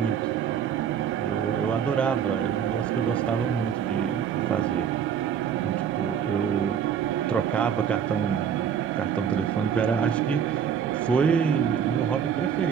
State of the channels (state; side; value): quieter; left; 8.1 dB